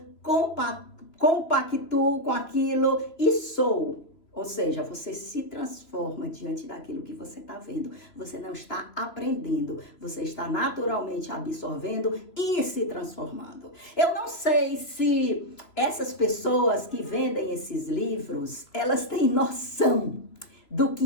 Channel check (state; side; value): late; right; 3.0 ms